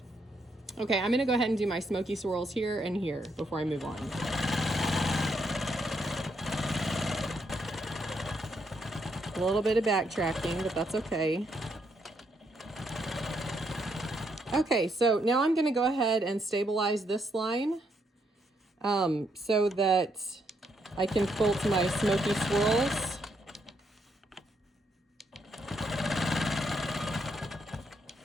Okay, I'm gonna go ahead and do my smoky swirls here and here before I move on. A little bit of backtracking, but that's okay. Okay, so now I'm gonna go ahead and stabilize this line so that I can quilt my smoky swirls.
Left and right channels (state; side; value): normal; both; correlation 0.76